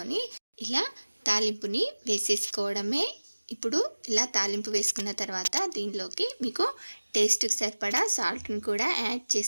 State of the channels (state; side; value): inverted; both; correlation -1.00